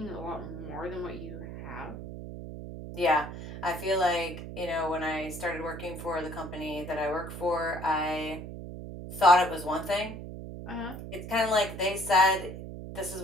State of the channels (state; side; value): noise; right; hum, 10 dB below the sound